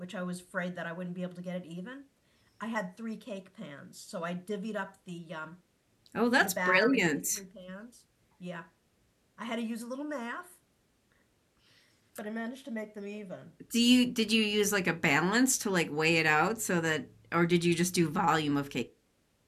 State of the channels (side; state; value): both; identical; correlation 1.00